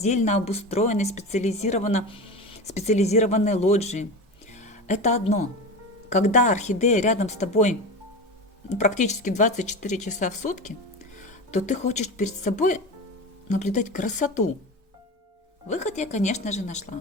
обустроенной специализированной лоджии. Это одно. Когда орхидея рядом с тобой практически 24 часа в сутки, то ты хочешь перед собой наблюдать красоту. Выход я, конечно же,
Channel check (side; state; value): both; normal; correlation 0.27